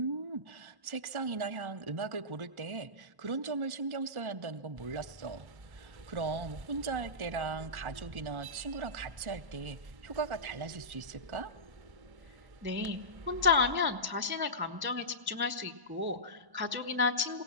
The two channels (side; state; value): left; late; 1.1 ms